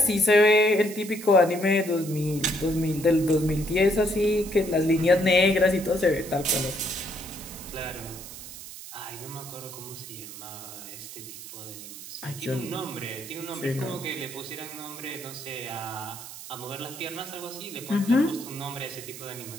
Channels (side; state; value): right; noise; hiss, 13 dB below the sound